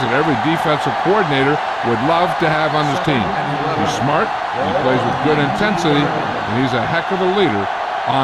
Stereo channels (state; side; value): identical; both; correlation 1.00